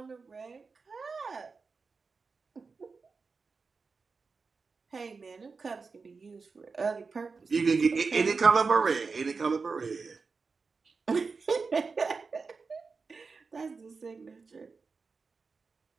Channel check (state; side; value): quieter; left; 4.6 dB